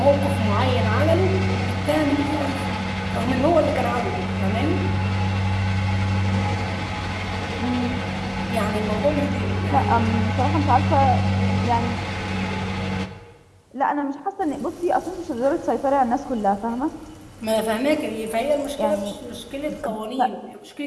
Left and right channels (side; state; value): both; identical; correlation 1.00